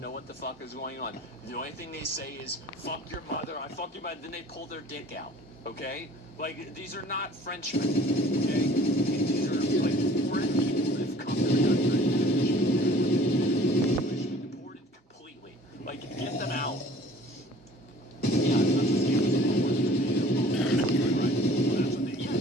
what the fuck is going on. The only thing they say is, fuck your mother, I fuck your mother. Then they pull their dick out. Okay? Like, these are not Frenchmen. Okay? These are, like, foreign people that have come to the country. They should be deported completely. Like, get them out. Yeah, that's what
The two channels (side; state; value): both; normal; correlation 0.50